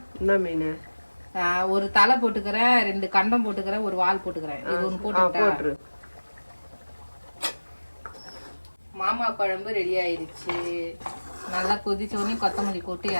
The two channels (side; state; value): both; inverted; correlation -1.00